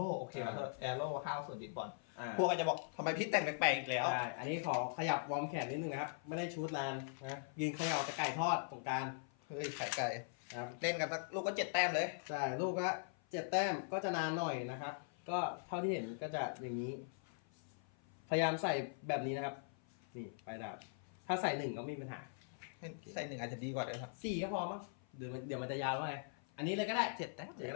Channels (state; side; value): silent; right; 50 dB below the other